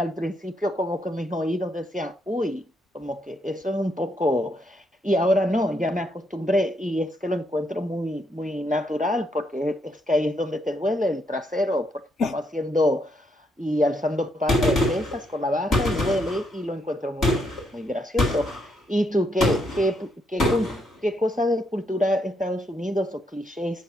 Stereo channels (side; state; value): both; normal; correlation 0.76